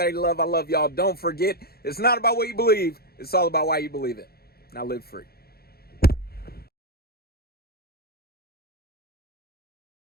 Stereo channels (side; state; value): right; late; 0.45 ms